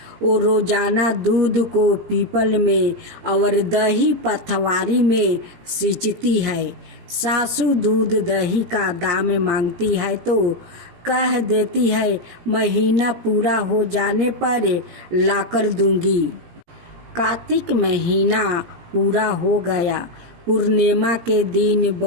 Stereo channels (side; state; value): left; late; 17 ms